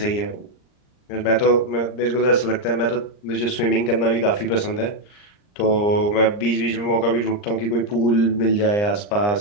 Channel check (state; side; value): late; right; 39 ms